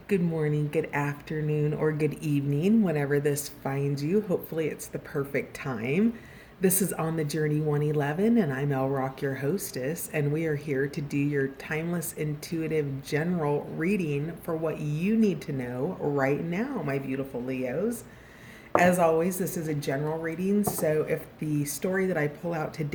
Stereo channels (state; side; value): identical; both; correlation 1.00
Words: Good morning, good afternoon, or good evening, whenever this finds you. Hopefully, it's the perfect time. This is On the Journey 111, and I'm El Rock, your hostess, and we are here to do your timeless, intuitive, general reading for what you need to know right now, my beautiful Leos. As always, this is a general reading, so if the story that I pull out